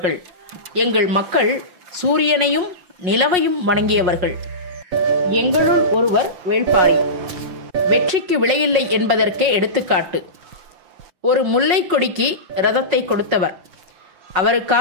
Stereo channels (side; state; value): left; late; 5.5 ms